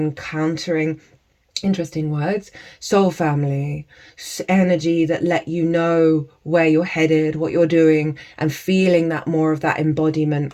countering, interesting words, soul family, energy that let you know where you're headed, what you're doing, and feeling that more of that embodiment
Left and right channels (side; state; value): both; identical; correlation 1.00